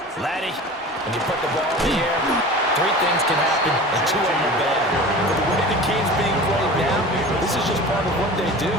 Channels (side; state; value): both; normal; correlation 0.37